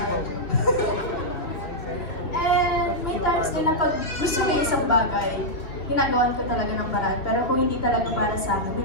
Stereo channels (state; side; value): late; right; 2.8 ms